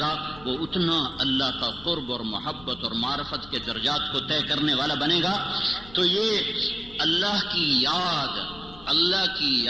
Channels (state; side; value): noise; left; rumble, 20 dB below the sound